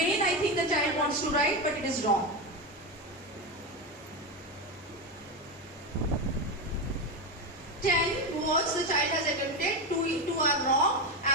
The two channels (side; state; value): both; normal; correlation 0.14